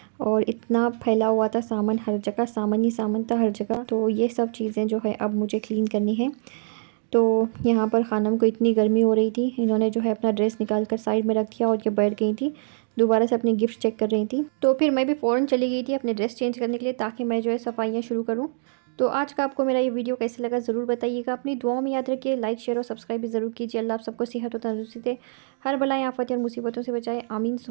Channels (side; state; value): left; silent; digital silence